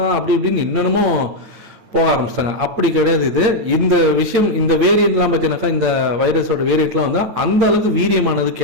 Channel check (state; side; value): late; left; 8.8 ms